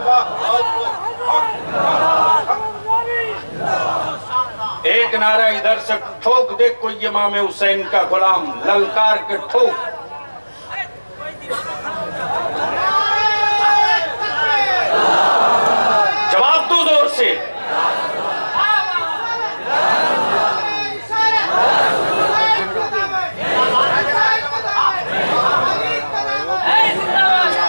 एक नारा इधर से ठोक दे कोई इमाम हुसैन का गुलाम, ललकार के ठोक। जवाब दो जोर से।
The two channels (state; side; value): inverted; both; correlation -1.00